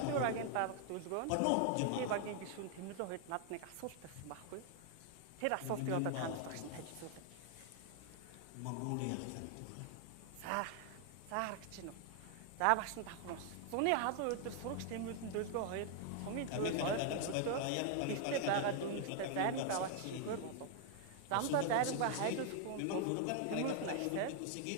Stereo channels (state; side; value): different; both; correlation 0.00